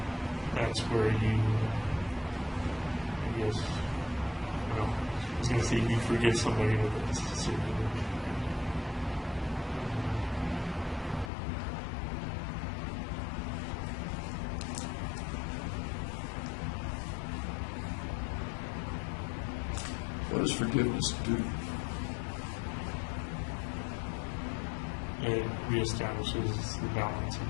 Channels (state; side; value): drops out; right; at 11.3 s